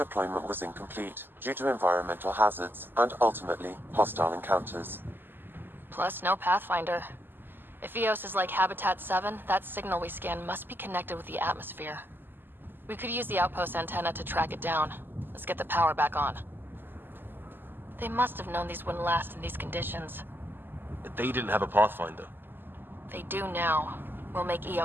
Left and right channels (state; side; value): late; left; 0.095 ms